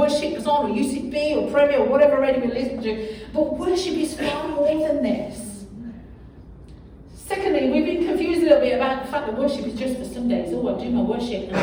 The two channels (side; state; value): both; identical; correlation 1.00